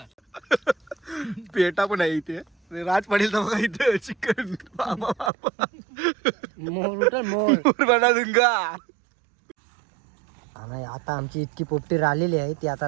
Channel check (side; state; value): left; drops out; at 5.3 s